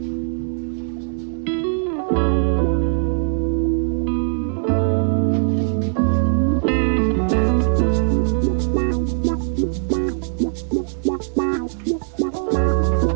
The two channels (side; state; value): left; silent; digital silence